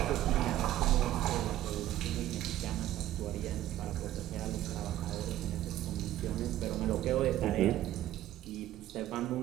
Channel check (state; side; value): quieter; left; 13.6 dB